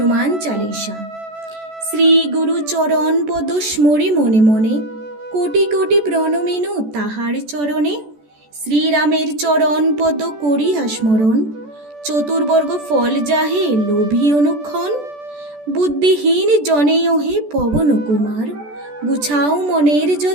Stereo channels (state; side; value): late; left; 14 ms